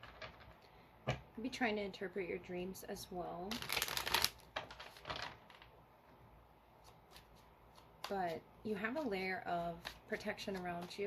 Could be trying to interpret your dreams as well. But you have a layer of protection around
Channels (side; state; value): both; identical; correlation 1.00